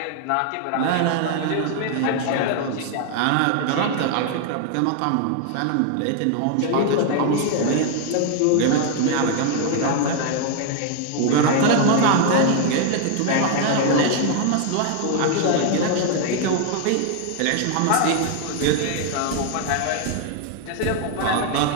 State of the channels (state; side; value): different; both; correlation 0.00